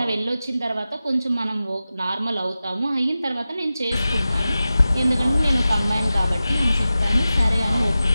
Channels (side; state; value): both; inverted; correlation -0.94